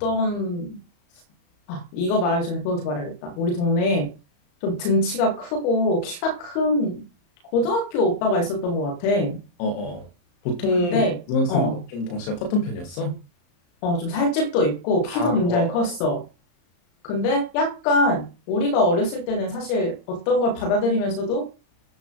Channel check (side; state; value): right; late; 34 ms